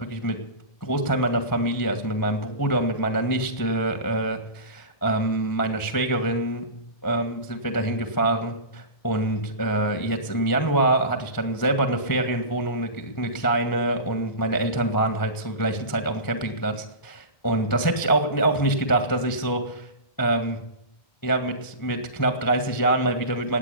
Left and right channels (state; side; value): late; right; 1.0 ms